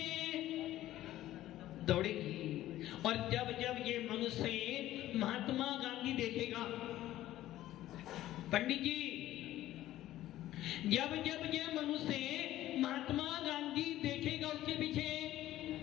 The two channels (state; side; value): quieter; right; 14.3 dB